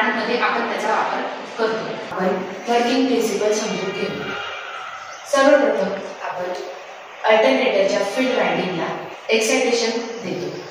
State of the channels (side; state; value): both; identical; correlation 1.00